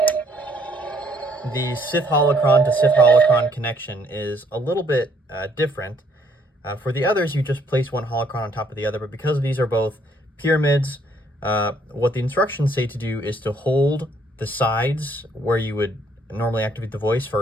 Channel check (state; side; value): normal; both; correlation 0.66